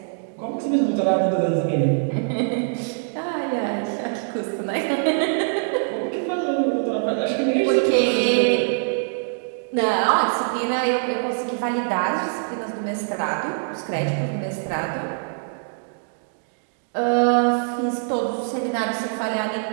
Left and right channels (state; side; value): silent; left; digital silence